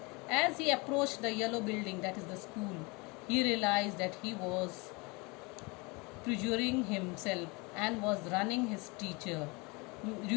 As he approached the yellow building, that is the school, he realized that he was perjuring himself and was ruining his teacher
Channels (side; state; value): right; quieter; 27.5 dB